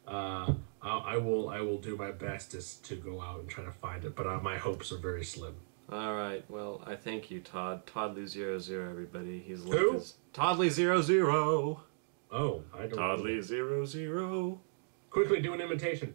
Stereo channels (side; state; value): left; silent; digital silence